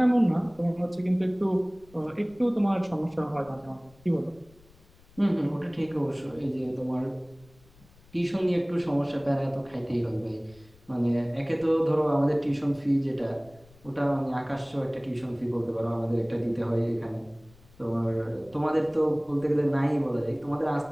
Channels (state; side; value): noise; left; rumble, 27 dB below the sound